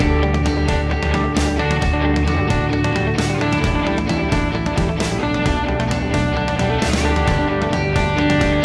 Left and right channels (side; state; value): both; identical; correlation 1.00